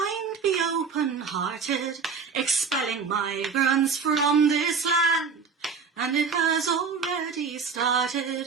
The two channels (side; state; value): left; quieter; 5.5 dB